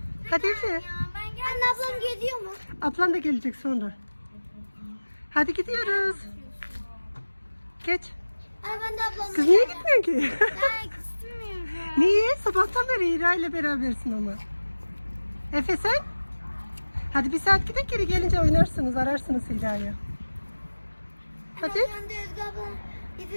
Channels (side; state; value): both; inverted; correlation -1.00